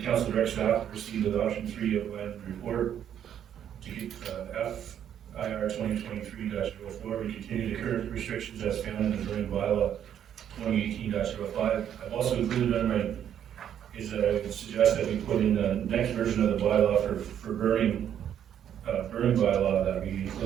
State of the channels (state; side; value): quieter; left; 9.6 dB